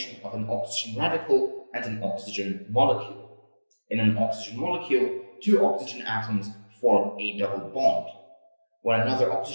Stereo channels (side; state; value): both; inverted; correlation -1.00